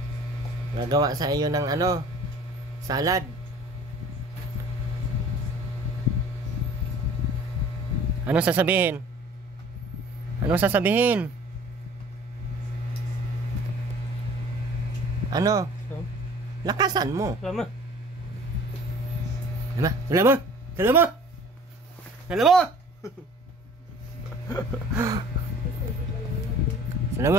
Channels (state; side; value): normal; both; correlation 0.48